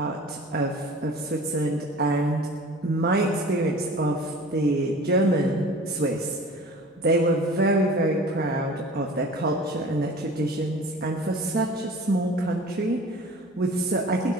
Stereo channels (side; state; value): both; normal; correlation 0.42